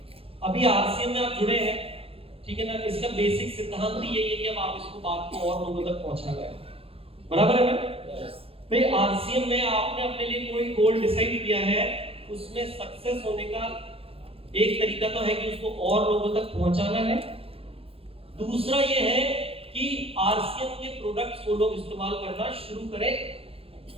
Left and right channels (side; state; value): left; late; 0.27 ms